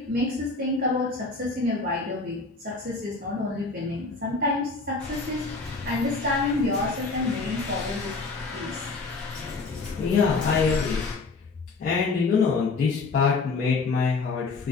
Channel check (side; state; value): right; quieter; 3.9 dB